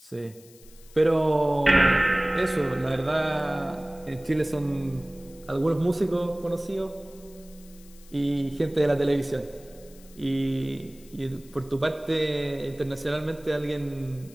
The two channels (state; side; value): noise; left; hiss, 24 dB below the sound